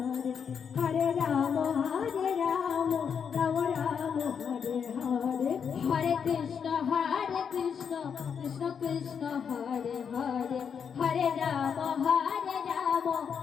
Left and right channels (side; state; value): right; quieter; 7.0 dB